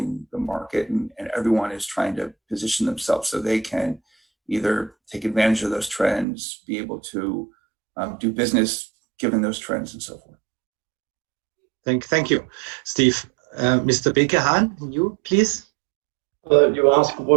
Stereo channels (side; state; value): left; drops out; at 6.2 s